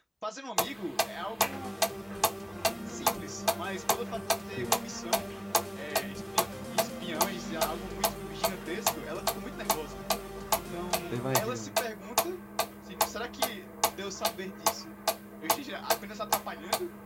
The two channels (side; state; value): both; identical; correlation 1.00